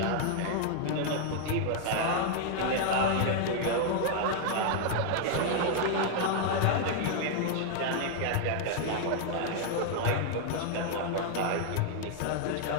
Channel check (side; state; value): both; different; correlation 0.00